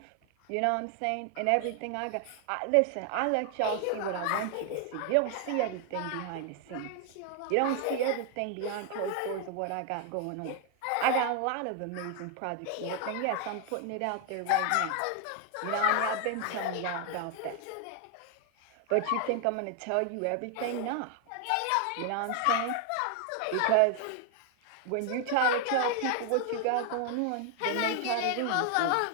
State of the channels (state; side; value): different; both; correlation 0.00